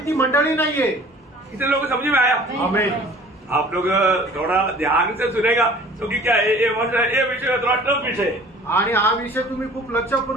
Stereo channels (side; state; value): both; normal; correlation 0.48